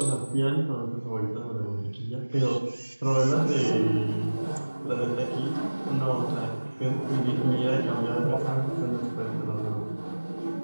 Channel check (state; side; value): inverted; both; correlation -1.00